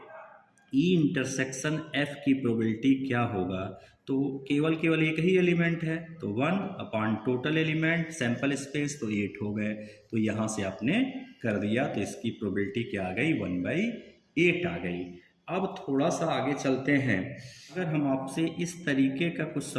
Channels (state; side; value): identical; both; correlation 1.00